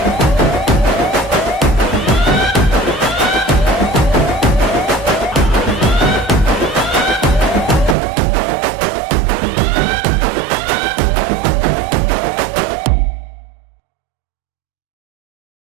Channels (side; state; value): left; drops out; at 8.0 s